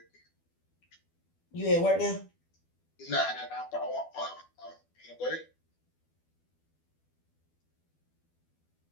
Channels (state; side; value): late; right; 12 ms